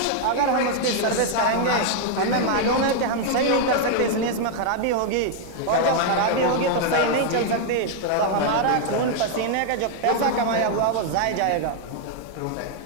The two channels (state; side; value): different; both; correlation 0.00